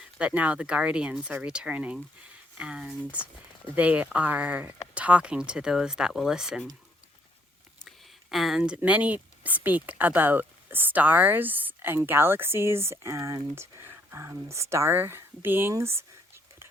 but now the guardians are returning, and they are talking to those that will listen. And many speak about stars and galaxies and star beings,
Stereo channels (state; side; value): normal; both; correlation 0.68